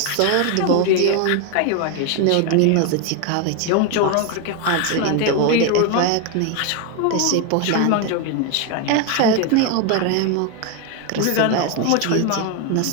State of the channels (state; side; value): different; both; correlation 0.01